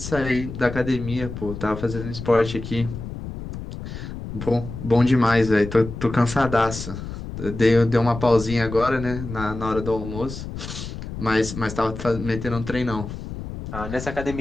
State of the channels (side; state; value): left; noise; rumble, 9 dB below the sound